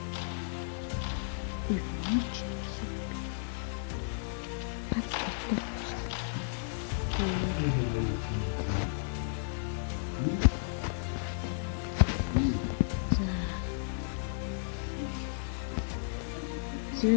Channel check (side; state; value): right; silent; digital silence